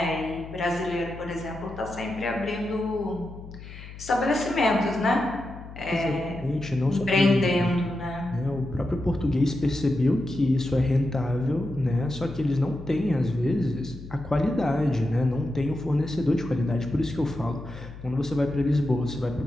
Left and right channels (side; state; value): left; noise; hum, 14 dB below the sound